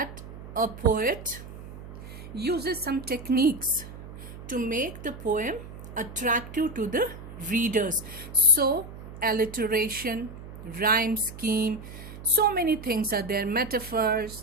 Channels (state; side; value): noise; right; hum, 13 dB below the sound